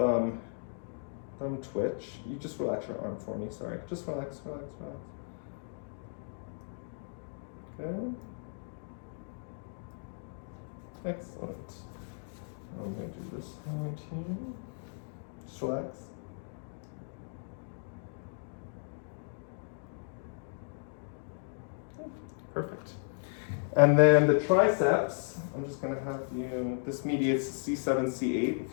twitch. You just relax your arm for me, sorry. Just relax. Okay. Excellent. I'm going to do this hand here. Just relax. Perfect. And then the triceps, I'm just going to have you, this mediates C7, C8,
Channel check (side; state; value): right; silent; digital silence